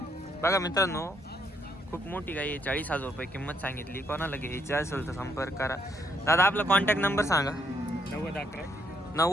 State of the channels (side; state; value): both; normal; correlation 0.72